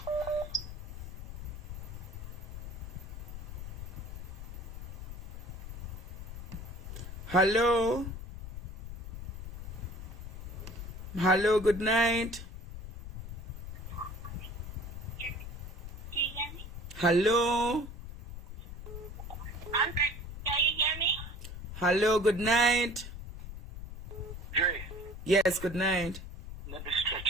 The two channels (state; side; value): noise; left; rumble, 9 dB below the sound